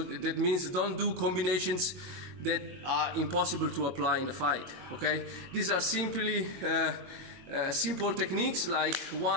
that means don't do combinations that are impossible to apply in a fight. Okay, these are simply simple techniques like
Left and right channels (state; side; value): late; left; 22 ms